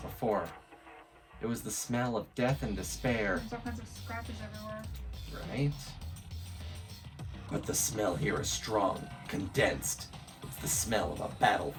It was the smell of death and despair. There's all kinds of scratches everywhere. Right? But the smell here is strong, condensed. It's the smell of a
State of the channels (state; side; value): identical; both; correlation 1.00